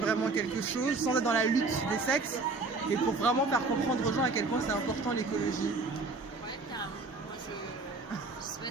quelque chose sans être dans la lutte des sexes, mais pour vraiment faire comprendre aux gens à quel point c'est important l'écologie? Ouais, carrément. Moi je sais pas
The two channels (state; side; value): quieter; left; 3.8 dB